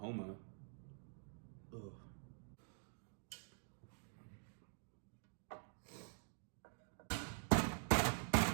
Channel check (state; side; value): silent; left; digital silence